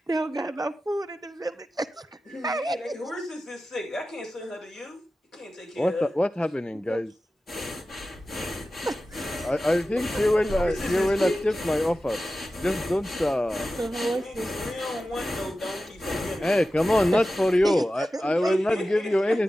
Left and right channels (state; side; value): normal; both; correlation 0.94